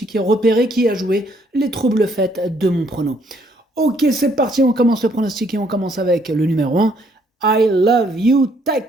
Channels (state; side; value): normal; both; correlation 0.67